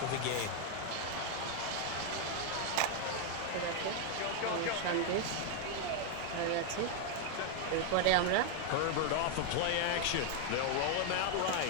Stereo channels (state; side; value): different; both; correlation 0.01